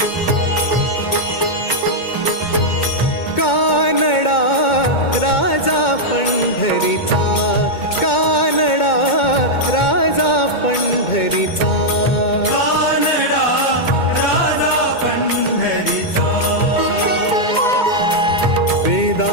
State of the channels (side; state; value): right; late; 2.2 ms